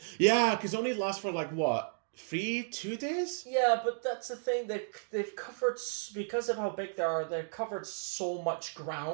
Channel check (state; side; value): silent; left; digital silence